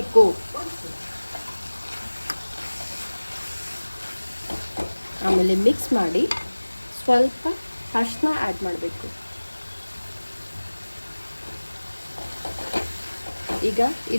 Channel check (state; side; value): inverted; both; correlation -1.00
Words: ಆಮೇಲೆ ಮಿಕ್ಸ್ ಮಾಡಿ ಸ್ವಲ್ಪ ಅರಿಶಿನ ಆ್ಯಡ್ ಮಾಡಬೇಕು. ಈಗ